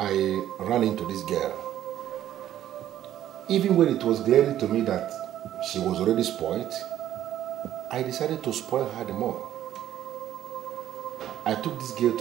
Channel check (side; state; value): left; quieter; 12.0 dB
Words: ran into this girl. Even when it was glaring to me that she was already spoiled, I decided to spoil her the more. I took this girl